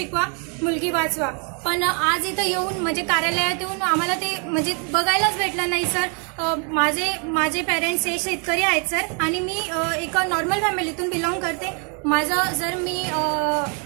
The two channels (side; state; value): left; quieter; 38.4 dB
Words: मुलगी वाचवा, पण आज इथं येऊन म्हणजे कार्यालयात येऊन आम्हाला ते म्हणजे बघायलाच भेटलं नाही सर। माझे पेरेंट्स हे शेतकरी आहेत सर, आणि मी एक नॉर्मल फॅमिलीतून बिलॉंग करते। माझं जर मी